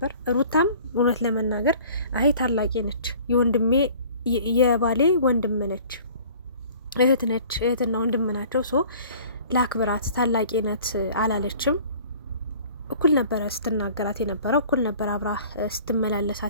ሩታም እውነት ለመናገር አይ ታላቂ ነች፣ የወንድሜ የባሌ ወንድም ነች፣ እህት ነች፣ እህትና ወንድም ናቸው። ሶ ላክብራት፣ ታላቂ ናት አላለችም። እኩል ነበረ ስትናገራት የነበረው፣ እኩል ነበረ አብራ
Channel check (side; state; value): both; inverted; correlation -0.49